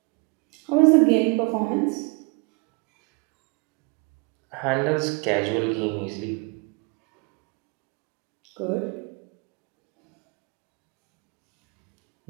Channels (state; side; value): quieter; left; 31.0 dB